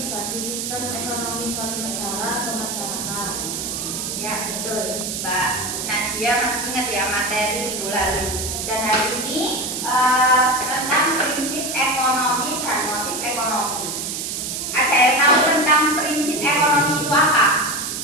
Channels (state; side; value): noise; right; hiss, 4 dB below the sound